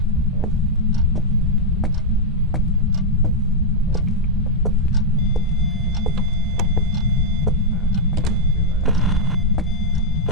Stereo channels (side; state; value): both; normal; correlation -0.02